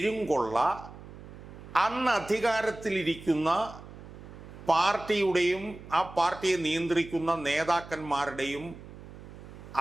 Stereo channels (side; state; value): right; noise; hum, 16 dB below the sound